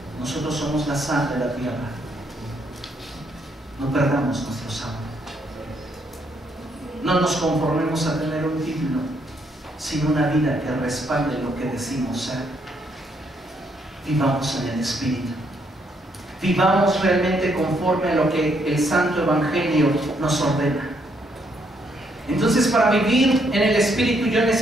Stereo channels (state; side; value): normal; both; correlation 0.73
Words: nosotros somos la sal de la tierra. No perdamos nuestro sabor. No nos conformemos a tener un título, sino una vida que respalde lo que decimos ser. Vivamos en el Espíritu. Vivamos realmente conforme a lo que el Santo Evangelio nos ordena. Entonces, para vivir en el Espíritu yo